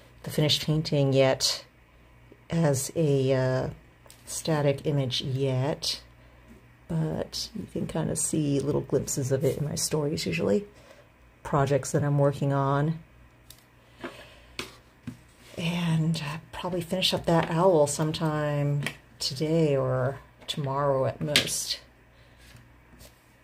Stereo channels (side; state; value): both; identical; correlation 1.00